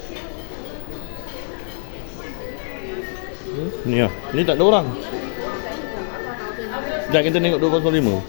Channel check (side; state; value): right; silent; digital silence